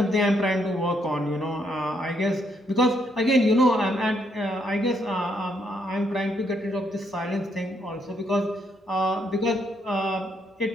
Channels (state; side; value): normal; both; correlation 0.74